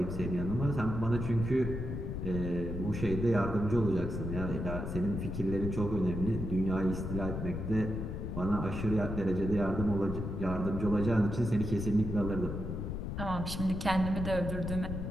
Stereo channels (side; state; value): left; noise; rumble, 4 dB below the sound